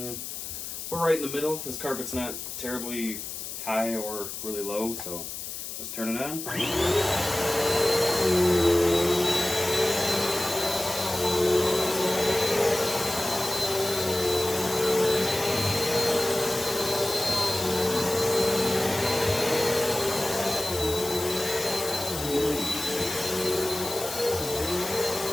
right in the middle. This carpet's not terribly high or really low, so let's turn it on.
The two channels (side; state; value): left; noise; hiss, 7 dB below the sound